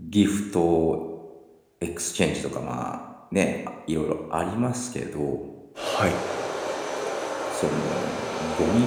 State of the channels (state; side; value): identical; both; correlation 1.00